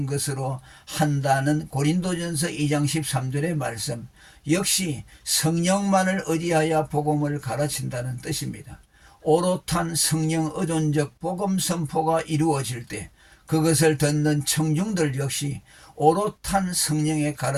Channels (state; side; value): identical; both; correlation 1.00